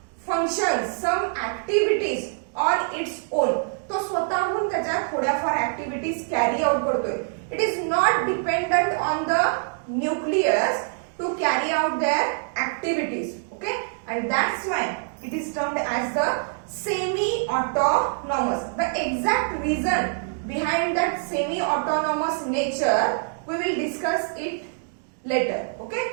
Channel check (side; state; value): left; silent; 62 dB below the other